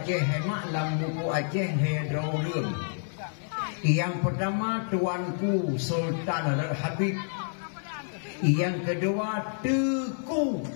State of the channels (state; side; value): silent; right; 59 dB below the other